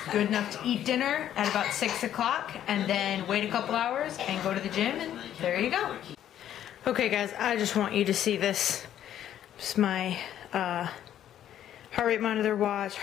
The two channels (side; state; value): right; quieter; 11.0 dB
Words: Good enough to eat dinner at about 6 o'clock and then wait a couple hours and go to the gym, and there you go. Okay guys, I just want you to see this. It's my heart rate monitor watch,